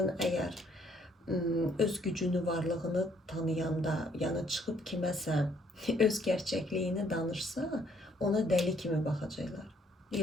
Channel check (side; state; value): both; normal; correlation 0.66